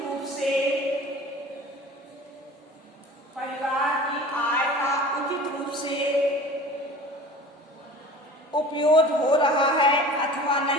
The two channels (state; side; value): normal; both; correlation 0.41